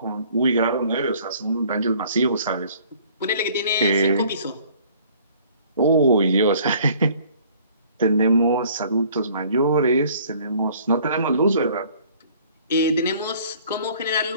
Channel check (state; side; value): inverted; both; correlation -0.56